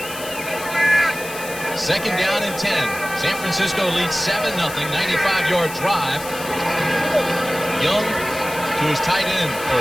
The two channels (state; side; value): noise; left; hiss, 12 dB below the sound